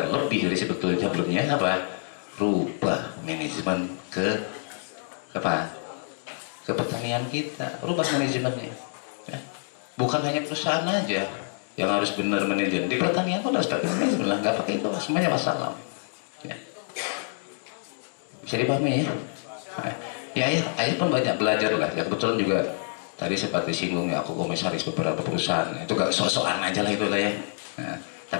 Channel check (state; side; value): silent; right; 60 dB below the other